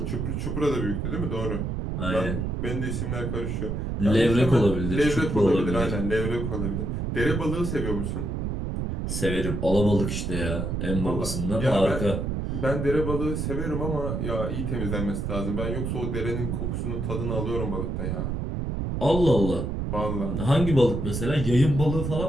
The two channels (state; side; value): noise; right; rumble, 2 dB below the sound